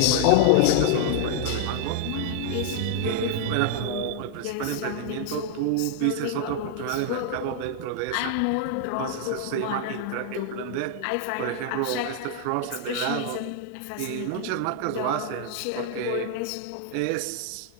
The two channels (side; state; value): both; different; correlation -0.01